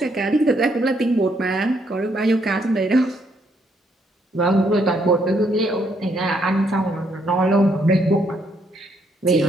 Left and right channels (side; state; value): both; normal; correlation 0.72